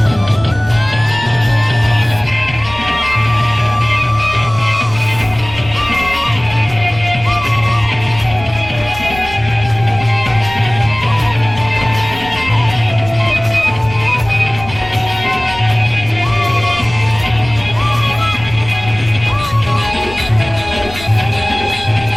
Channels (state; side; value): noise; left; rumble, 15 dB below the sound